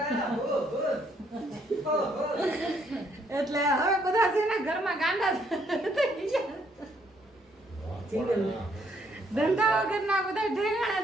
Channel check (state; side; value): normal; both; correlation 0.70